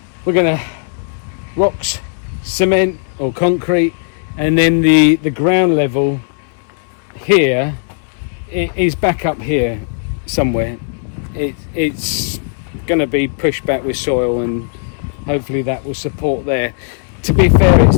We're gonna rocks, cement or concrete, and then the ground level here is back up here somewhere. It's gonna be pushed back with soil, and hopefully that will support there. To be fair,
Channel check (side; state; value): right; silent; digital silence